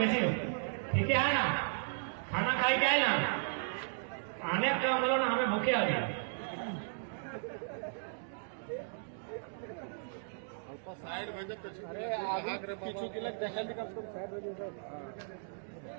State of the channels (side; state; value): left; silent; digital silence